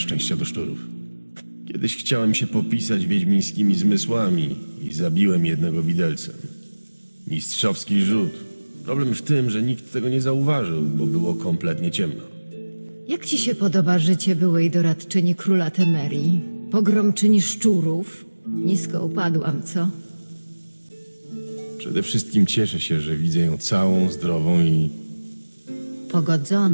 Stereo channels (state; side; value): inverted; both; correlation -1.00